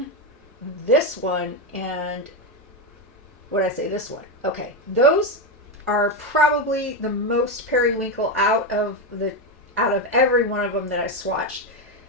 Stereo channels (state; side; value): normal; both; correlation 0.09